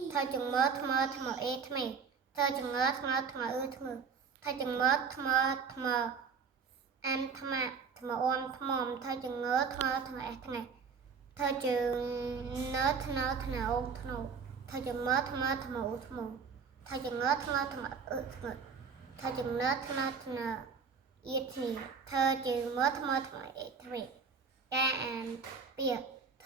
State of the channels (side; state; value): left; quieter; 5.7 dB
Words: ធ្វើចងើថ្មើថ្មើអេថ្មែធ្វើចងើថ្មើថ្មើថ្មើធ្វើចងើថ្មើថ្មើអានថ្មថ្មអមថ្មធ្វើចងើថ្មើថ្មើអេថ្ងៃធ្វើចងើធ្នើធ្នើអូធ្នូធ្វើចងើថ្មើថ្មើឧធ្នូធ្វើចងើថ្មើថ្មើធ្ងើធ្វើចងើធ្នើធ្នើអៀធីធ្វើចងើថ្មើថ្មើអេថ្មីការអានពាក្យធ